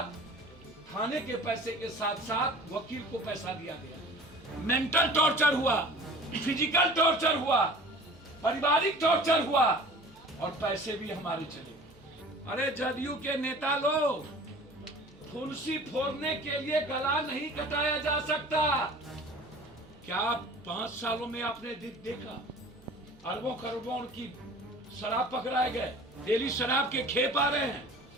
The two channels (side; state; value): right; noise; hum, 28 dB below the sound